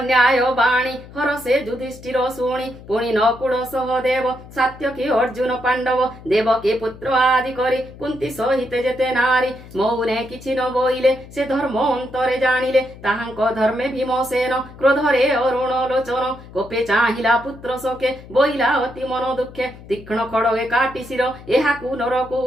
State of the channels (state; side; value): noise; left; hum, 18 dB below the sound